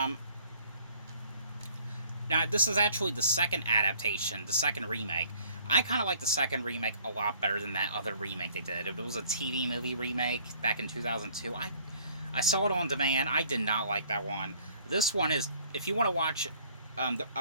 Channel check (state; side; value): inverted; both; correlation -0.57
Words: this is actually the second adaptation, the second remake. I kind of like the second remake a lot better than that other remake they did. It was a TV movie remake back in 2002. I saw it on demand. I did not like that one. This one is, if you want to watch